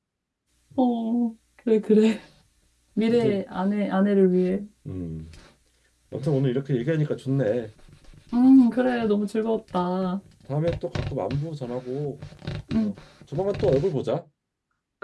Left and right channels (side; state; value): both; identical; correlation 1.00